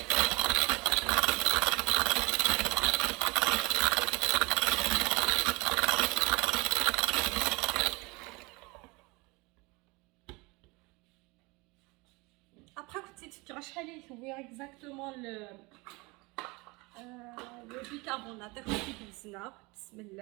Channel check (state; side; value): quieter; left; 25.7 dB